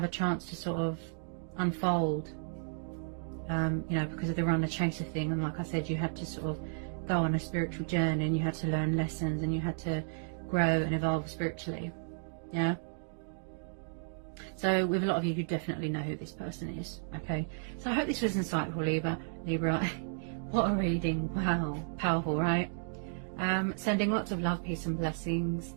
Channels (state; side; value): silent; left; digital silence